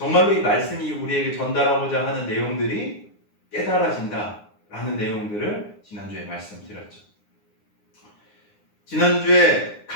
이 말씀이 우리에게 전달하고자 하는 내용들이 깨달아진다라는 내용들을 지난주에 말씀드렸죠. 지난주에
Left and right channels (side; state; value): right; late; 9.7 ms